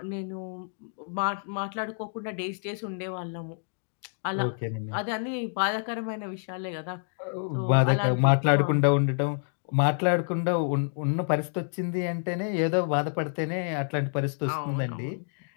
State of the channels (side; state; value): right; silent; digital silence